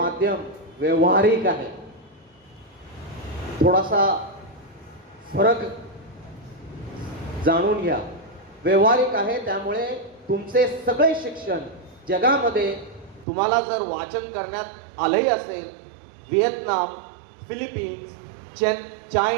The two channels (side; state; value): left; drops out; at 13.2 s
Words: व्यवहारिक आहे. थोडासा फरक जाणून घ्या. व्यवहारिक आहे त्यामुळे तुमचे सगळे शिक्षण जगामध्ये तुम्हाला जर वाचन करण्यात आलंही असेल, व्हिएतनाम, फिलिपिन्स,